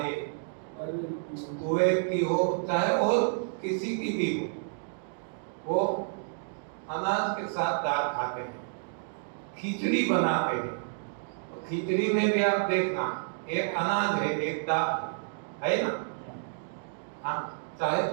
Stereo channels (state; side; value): silent; left; digital silence